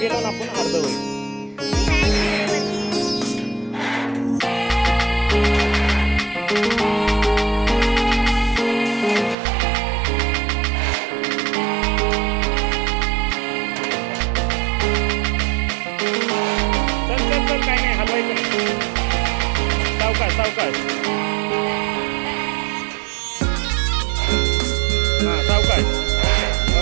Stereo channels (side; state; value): left; drops out; at 9.3 s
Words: गेलो ना आपण अर्ध होईल. चल चल चल काय नाही हलवायचं नाही. सावकाश सावकाश. हां सावकाश.